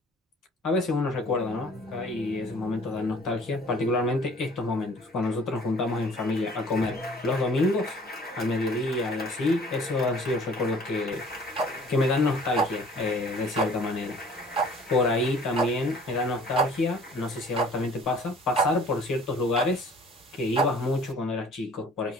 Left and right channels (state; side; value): normal; both; correlation 0.52